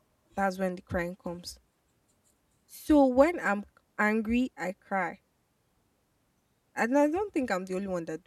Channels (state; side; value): identical; both; correlation 1.00